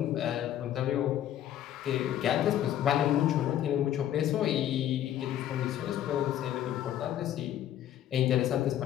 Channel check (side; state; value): right; quieter; 11.5 dB